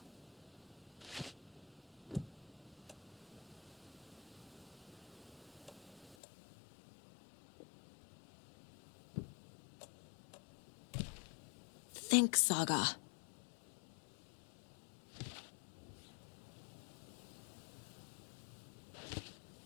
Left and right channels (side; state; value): right; drops out; at 6.2 s